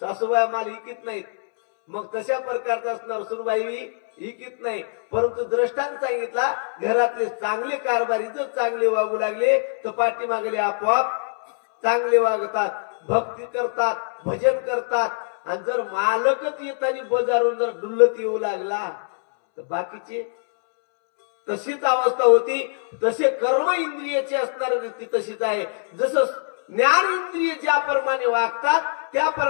सासूबाई माल इकीत नाहीत, मग तशा प्रकारचा असणार सुनबाई इकीत नाही. परंतु द्रष्टांत सांगितला घरातले चांगले कारभारी जर चांगले वागू लागले तर पाठी मागले आपोआप चांगले वागतात, भक्ती करतात, भजन करतात. आणि जर मालकच येताना बाजारून जर डुल्लत येऊ लागला तर बाकीचे तशीच अवस्था होती. तसे कर्म इंद्रियाचे असणारी रीती तशीच आहे. जसं ज्ञान इंद्रिय ज्याप्रमाणे वागतात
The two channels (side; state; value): right; silent; 63 dB below the other